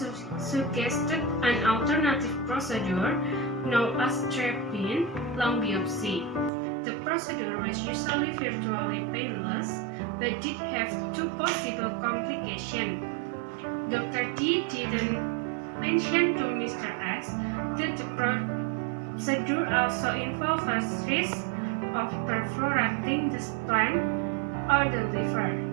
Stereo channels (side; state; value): left; drops out; at 6.5 s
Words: suggested an alternative procedure known as drop-in lung biopsy. The procedure was usually virtually painless, but did have two possible complications. Dr. D didn't mention to Mr. S that the procedure also involves risk of perforating the spleen or the liver.